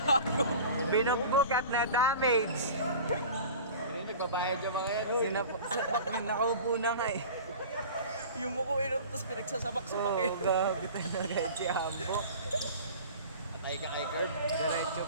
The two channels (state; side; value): inverted; both; correlation -0.39